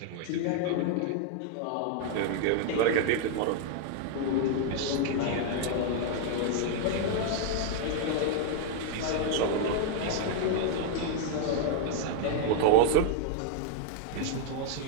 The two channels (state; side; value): different; both; correlation 0.00